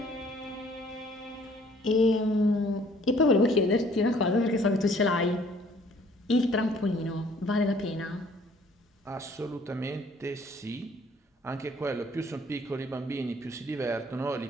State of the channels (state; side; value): normal; both; correlation 0.58